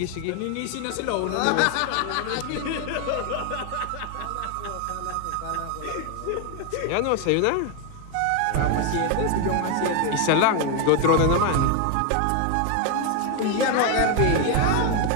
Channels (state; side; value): different; both; correlation 0.01